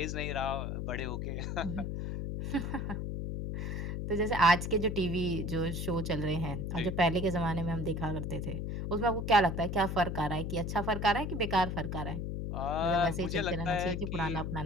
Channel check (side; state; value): left; noise; hum, 3 dB below the sound